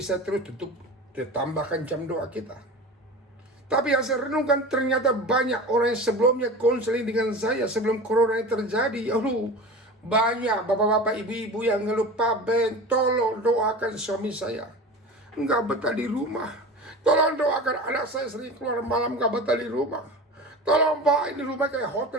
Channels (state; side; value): normal; both; correlation 0.33